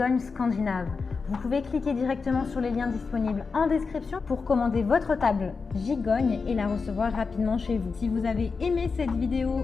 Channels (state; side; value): quieter; right; 4.8 dB